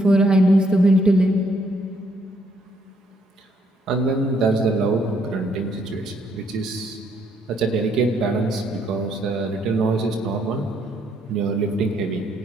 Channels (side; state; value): both; normal; correlation 0.70